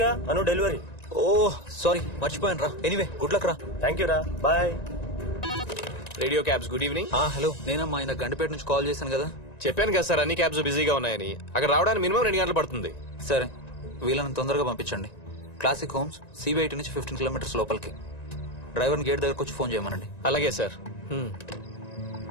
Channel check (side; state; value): right; late; 1.9 ms